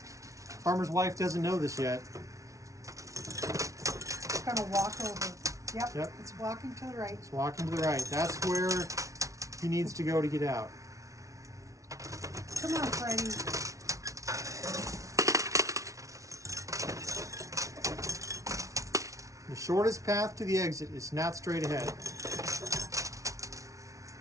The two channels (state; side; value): late; left; 0.16 ms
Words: Farmer's wife doesn't know this yet. It's gonna walk over. Yep. It's walking to the right. It's walking to the right. That's where he needs to go to get out. Come on, Freddy. shortest path to the exit is not straight ahead.